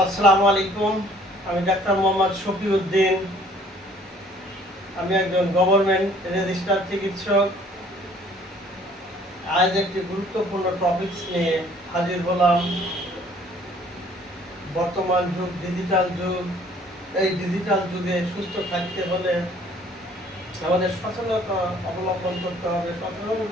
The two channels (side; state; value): both; normal; correlation 0.57